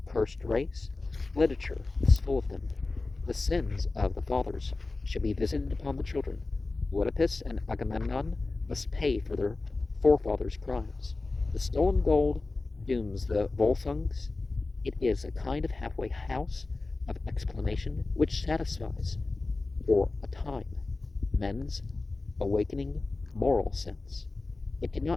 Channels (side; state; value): right; quieter; 3.5 dB